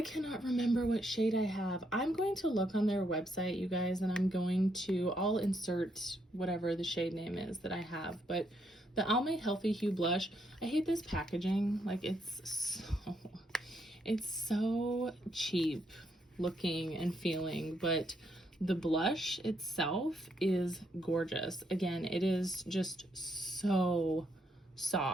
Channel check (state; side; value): normal; both; correlation 0.76